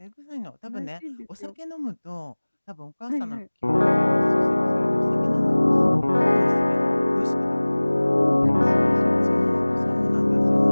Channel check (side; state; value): both; inverted; correlation -1.00